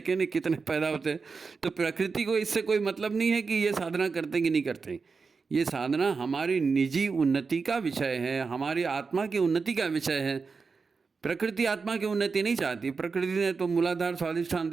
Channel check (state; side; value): quieter; left; 4.8 dB